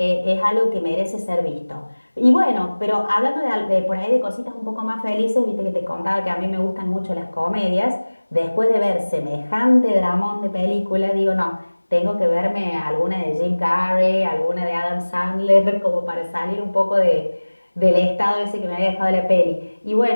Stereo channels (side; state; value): both; inverted; correlation -1.00